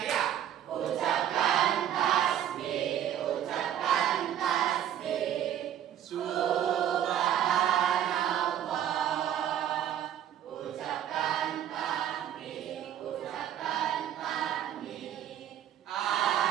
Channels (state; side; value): quieter; left; 10.6 dB